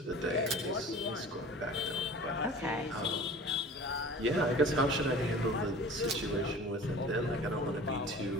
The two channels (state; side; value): normal; both; correlation 0.41